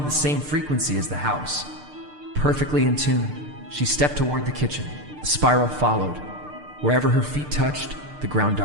the same frequency as the house. Perfectly in tune, she stepped toward the kitchen. The spiral followed. Wherever her feet touched, the ground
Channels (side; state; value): left; late; 6.7 ms